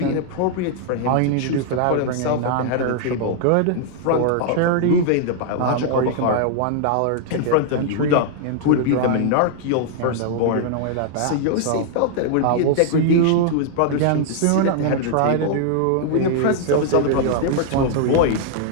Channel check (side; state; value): both; different; correlation -0.01